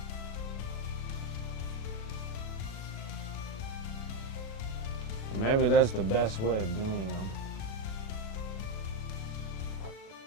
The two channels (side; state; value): right; late; 36 ms